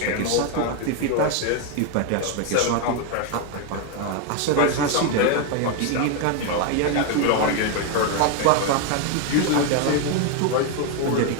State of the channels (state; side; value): different; both; correlation 0.01